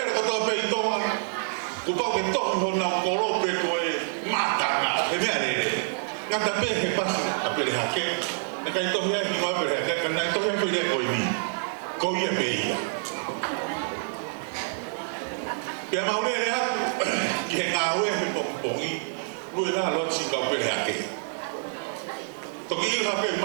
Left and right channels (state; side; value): silent; left; 60 dB below the other